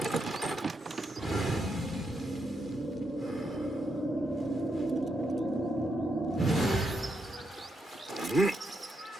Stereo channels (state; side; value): normal; both; correlation 0.81